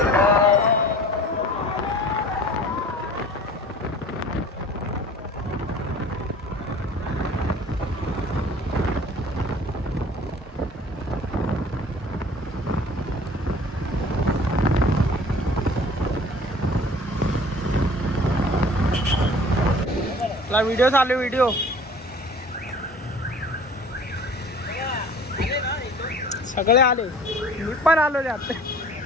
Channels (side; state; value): both; normal; correlation 0.46